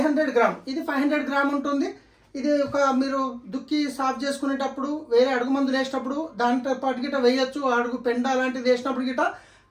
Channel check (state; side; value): identical; both; correlation 1.00